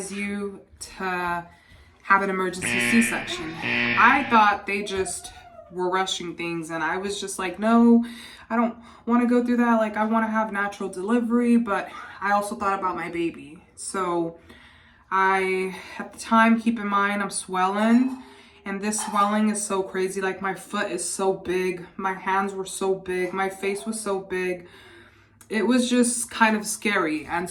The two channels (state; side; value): identical; both; correlation 1.00